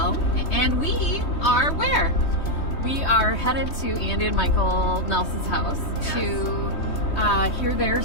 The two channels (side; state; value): right; late; 3.2 ms